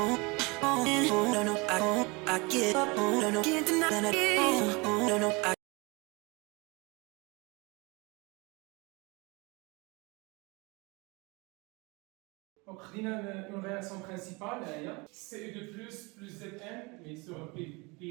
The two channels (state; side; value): quieter; left; 27.2 dB